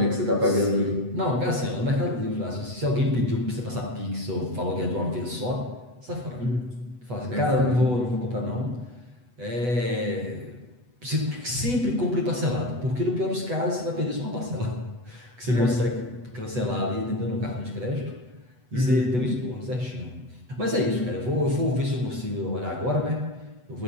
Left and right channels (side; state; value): left; late; 8.1 ms